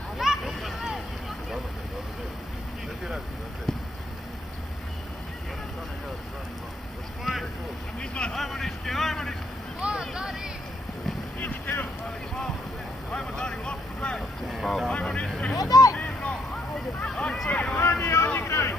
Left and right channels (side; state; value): both; normal; correlation 0.72